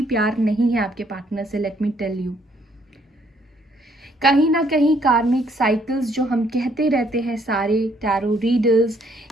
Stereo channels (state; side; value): normal; both; correlation 0.67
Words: प्यार नहीं है आपके पार्टनर से, लेट मी टेल यू। कहीं ना कहीं कार्मिक साइकिल्स जो हम कहते रहते हैं सारे टैरो रीडर्स